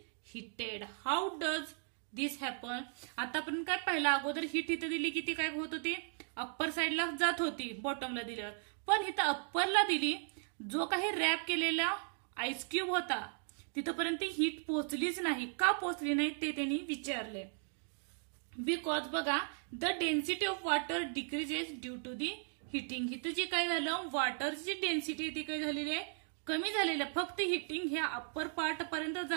heated. How does this happen. आतापर्यंत काय पहिला अगोदर हिट इथं दिली की ती काय होत होती, अप्पर साईडला जात होती बॉटमला दिल्यावर, पण इथं अप्परला दिली, जो काही रॅप केलेला आईस क्यूब होता तिथपर्यंत हीट पोहोचलीच नाही. का पोहोचली नाही ते त्यांनी विचारले. बिकॉज बघा the density of water decreases due to the heating. इथं जे काय झालं, वॉटरची डेन्सिटी ती काय झालेली आहे, कमी झालेली आहे. फक्त हिटिंग ह्या अप्पर पार्ट पर्यंत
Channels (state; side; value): silent; left; 53 dB below the other